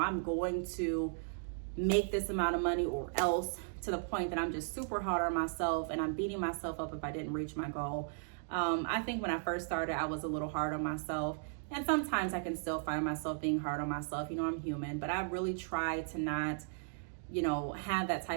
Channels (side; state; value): left; silent; digital silence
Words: going to make this amount of money or else, to the point that I'm just super hard on myself and I'm beating myself up if I didn't reach my goal. I think when I first started, I was a little hard on myself. And sometimes I can still find myself being hard on myself. You know, I'm human, but I really try to not, you know, have that